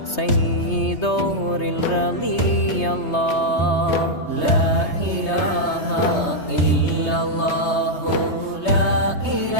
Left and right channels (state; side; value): late; right; 3.2 ms